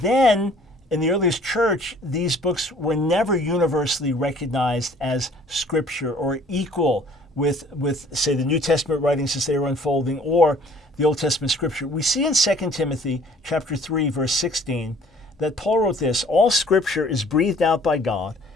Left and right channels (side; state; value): both; normal; correlation 0.55